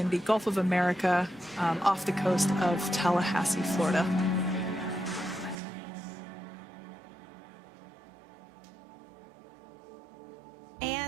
the Gulf of America, off the coast of Tallahassee, Florida.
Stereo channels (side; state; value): left; drops out; at 5.6 s